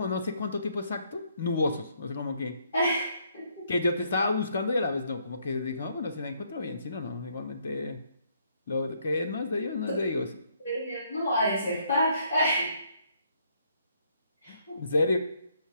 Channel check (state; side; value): inverted; both; correlation -0.70